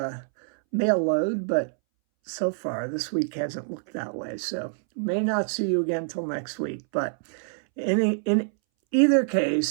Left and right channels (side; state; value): left; silent; 61 dB below the other